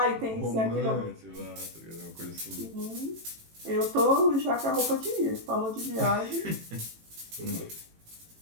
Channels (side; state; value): left; late; 18 ms